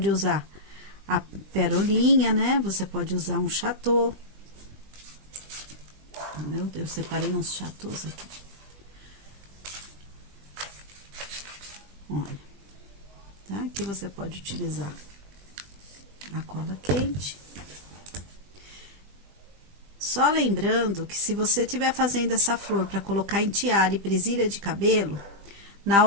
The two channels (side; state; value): left; late; 20 ms